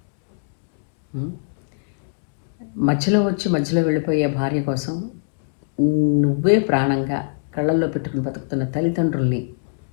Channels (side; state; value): right; silent; digital silence